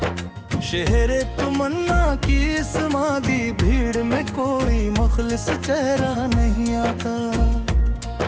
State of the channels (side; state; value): both; identical; correlation 1.00